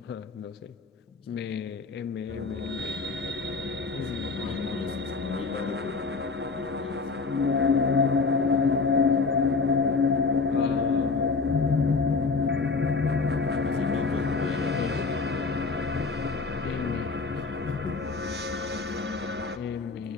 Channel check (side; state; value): right; quieter; 4.3 dB